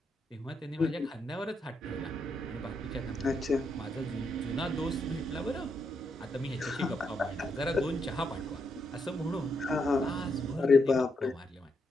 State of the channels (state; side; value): normal; both; correlation 0.80